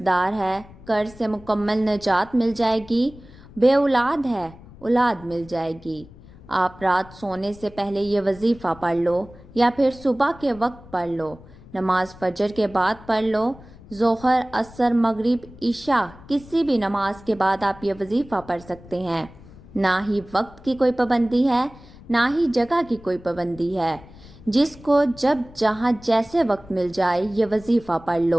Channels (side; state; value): left; noise; rumble, 21 dB below the sound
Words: دار ہے قرض سے مکمل نجات مل جائے گی، بے اولاد ہے اولاد مل جائے گی۔ آپ رات سونے سے پہلے یہ وظیفہ پڑھ لو، یا پھر صبح کے وقت پڑھ لو، نماز فجر کے بعد پڑھ لو، ظہر، عصر، مغرب، عشاء کسی بھی نماز کے بعد آپ یہ وظیفہ پڑھ سکتے ہیں۔ نہ ہی وقت کی کوئی پابندی ہے، نہ ہی جگہ کی کوئی پابندی ہے، جس کو جب جہاں جیسے وقت مل جائے یہ وظیفہ پڑھ